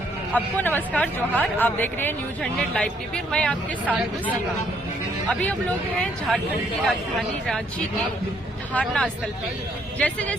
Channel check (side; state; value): both; normal; correlation 0.68